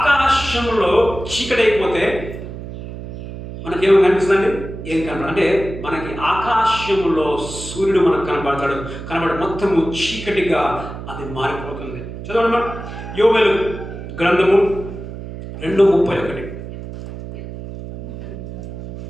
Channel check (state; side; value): noise; right; hum, 10 dB below the sound